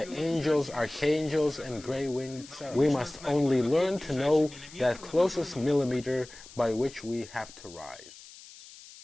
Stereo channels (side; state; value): left; noise; hiss, 19 dB below the sound